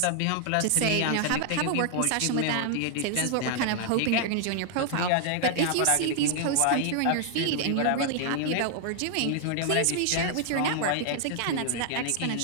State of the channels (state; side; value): different; both; correlation 0.00